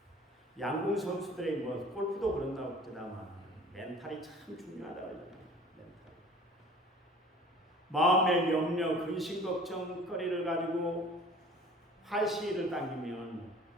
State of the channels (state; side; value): normal; both; correlation 0.47